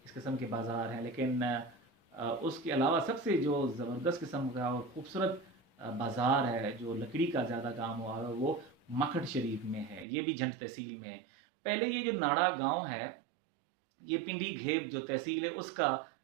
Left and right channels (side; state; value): left; drops out; at 10.1 s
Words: اس قسم کے بازار ہیں. لیکن اس کے علاوہ سب سے جو زبردست قسم کا اور خوبصورت بازار ہے جو لکڑی کا زیادہ کام ہوا ہے وہ مکھٹ شریف میں ہے. یہ بھی جھنڈ تحصیل میں ہے. پہلے یہ جو ناڑا گاؤں ہے یہ پنڈی گھیب جو تحصیل ہے اس کا